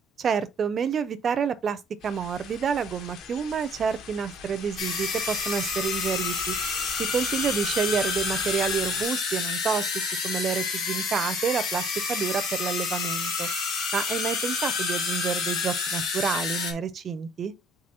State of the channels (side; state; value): both; normal; correlation 0.57